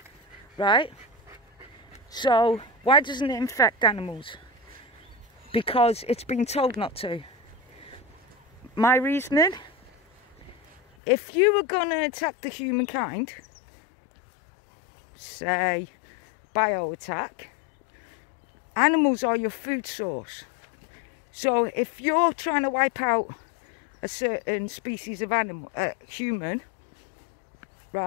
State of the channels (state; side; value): drops out; right; at 10.8 s